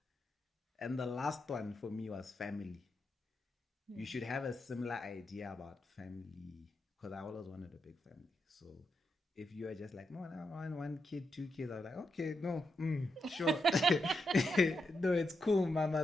And the last one for me was family. You should have a similar idea about family, because I always wanted a big family. So if you are just like, no, I want 1 kid, 2 kids, I was like, okay, no, sure. No, it's cool,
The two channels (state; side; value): normal; both; correlation 0.84